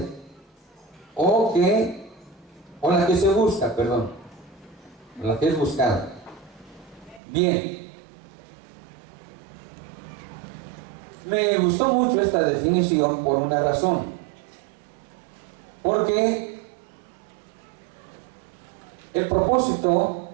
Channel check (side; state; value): left; drops out; at 7.2 s